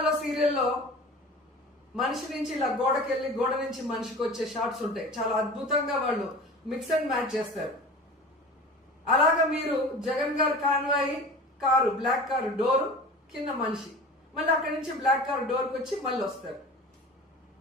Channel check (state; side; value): normal; both; correlation 0.38